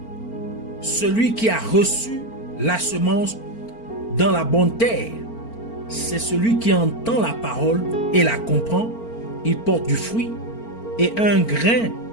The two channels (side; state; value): right; late; 4.4 ms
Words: Celui qui a reçu la semence dans la bonne terre, c'est celui qui entend la parole et la comprend. Il porte du fruit et un grain